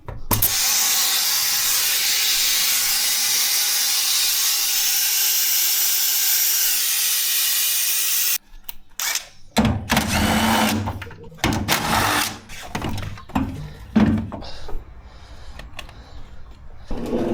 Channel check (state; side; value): identical; both; correlation 1.00